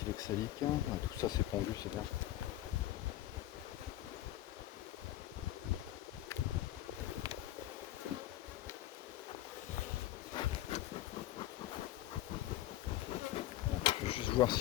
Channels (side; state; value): right; quieter; 14.4 dB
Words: oxalique. Tout ça c'est pondu, c'est bien. Je vais juste voir